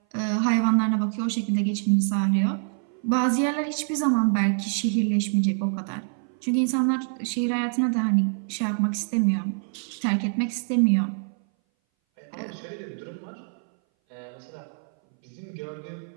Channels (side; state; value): left; silent; 59 dB below the other